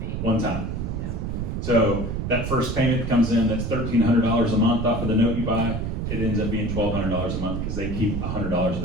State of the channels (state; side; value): noise; right; rumble, 3 dB below the sound